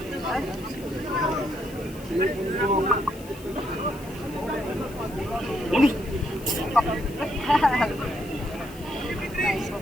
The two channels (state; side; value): noise; left; hiss, 20 dB below the sound